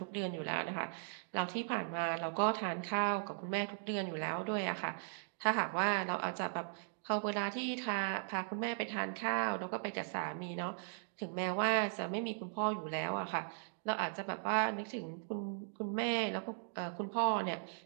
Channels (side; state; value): left; silent; digital silence